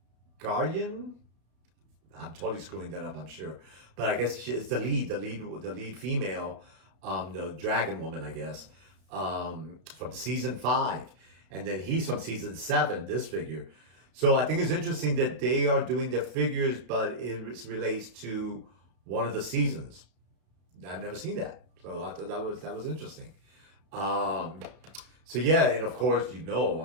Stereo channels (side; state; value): left; late; 32 ms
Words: I'm totally screwing that up, I'm sure, but I guess it's the lead female, the dragon woman, I guess, from season 5, and then he's from season 7. This figure, so I think it's interesting that they are doing their figures, but it relates to one of the seasons. I've never seen that, so I thought that was interesting. Um, so yeah, and of course, you know,